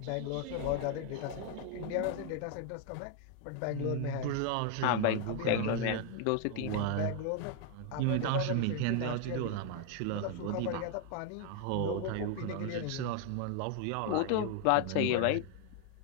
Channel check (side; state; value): both; different; correlation 0.00